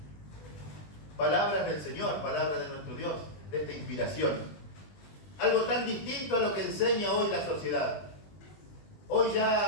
Palabras del Señor, palabras de nuestro Dios, de esta inspiración. Algo tan distinto a lo que enseña hoy la sociedad. Hoy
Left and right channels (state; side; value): late; right; 20 ms